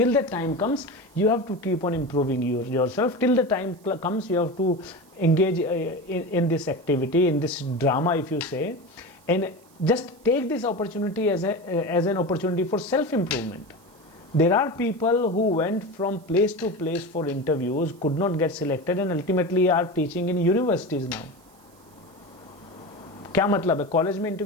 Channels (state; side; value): noise; right; hiss, 30 dB below the sound